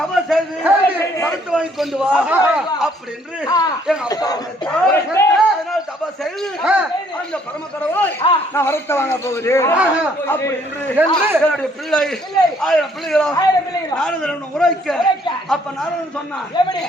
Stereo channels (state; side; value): normal; both; correlation 0.64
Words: செய்து மறுத்து வாங்கி கொண்டு வா அப்படி என்று எங்க அப்பா அதனால் தபா செய்து அந்த பரம கடவுளை நான் வரத்த வாங்க போகிறேன் அப்படி என்று என்னுடைய பிள்ளை 1000 பிள்ளைகளா நாரதன் உரைக்க அப்ப நாரதன் சொன்னான்